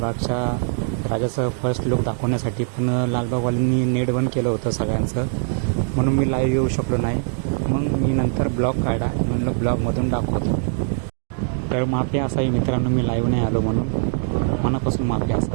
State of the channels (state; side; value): silent; left; digital silence